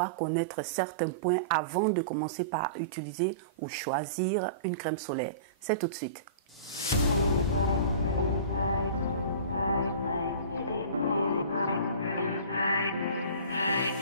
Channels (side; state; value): both; inverted; correlation -0.38